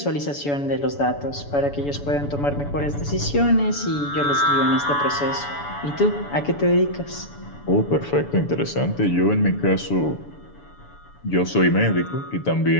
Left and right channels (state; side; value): late; right; 7.0 ms